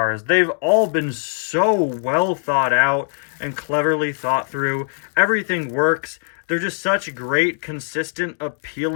They've all been so well thought out and cleverly thought through. Everything works. They're just such great, consistent,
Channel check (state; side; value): silent; right; digital silence